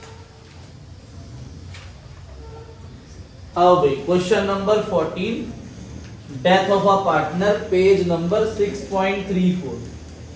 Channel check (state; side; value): identical; both; correlation 1.00